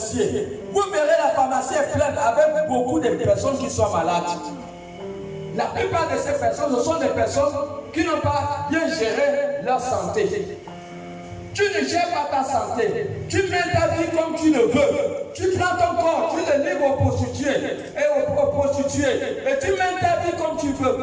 Vous verrez, la pharmacie est pleine avec beaucoup de personnes qui sont malades. La plupart de ces personnes, ce sont des personnes qui n'ont pas bien géré leur santé. Tu ne gères pas ta santé. Tu mets ta vie comme tu le veux. Tu prends ton corps, tu le livres aux prostituées et aux prostituées. Et tu mets ta vie comme tu veux.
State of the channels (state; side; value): identical; both; correlation 1.00